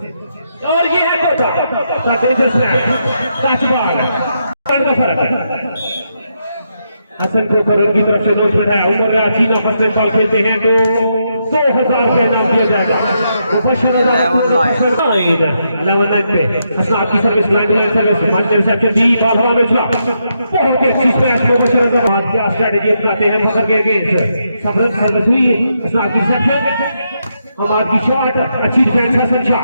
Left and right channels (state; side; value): inverted; both; correlation -0.81